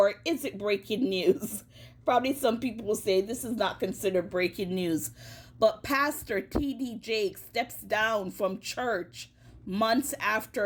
is it breaking news? Probably some people will say this is not considered breaking news. But Pastor T.D. Jakes steps down from church months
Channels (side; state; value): both; identical; correlation 1.00